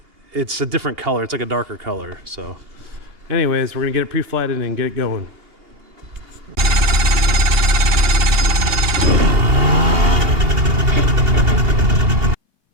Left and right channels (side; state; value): left; late; 2.8 ms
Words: a different color. It's like a darker color. So. Anyways, we're gonna get it pre-flighted and get it going.